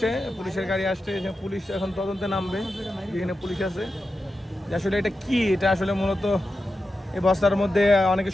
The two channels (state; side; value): normal; both; correlation 0.90